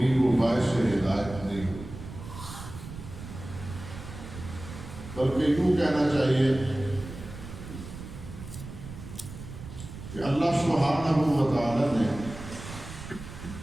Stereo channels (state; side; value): noise; right; rumble, 12 dB below the sound